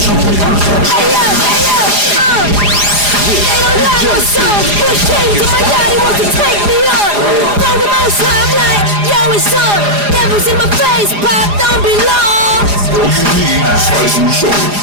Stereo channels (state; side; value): late; left; 4.9 ms